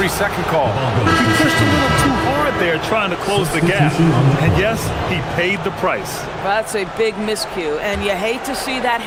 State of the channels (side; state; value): both; identical; correlation 1.00